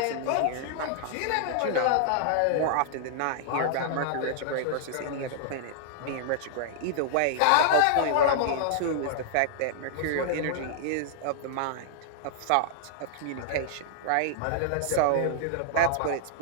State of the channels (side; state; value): both; different; correlation -0.01